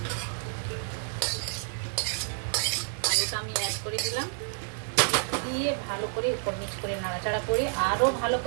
আলুটা আমি অ্যাড করে দিলাম। দিয়ে ভালো করে উপর নিচ করে নাড়াচাড়া করে আরও ভালো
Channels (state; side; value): silent; left; 58 dB below the other